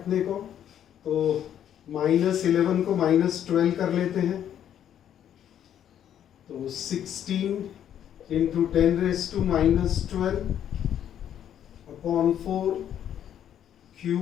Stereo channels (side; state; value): right; quieter; 10.0 dB